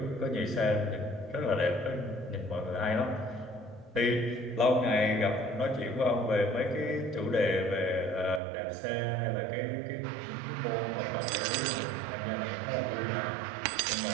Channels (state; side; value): drops out; left; at 8.4 s